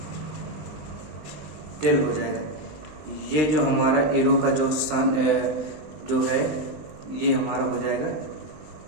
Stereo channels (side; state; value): left; late; 19 ms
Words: हो जाएगा। ये जो हमारा एरो का जो है ये हमारा हो जाएगा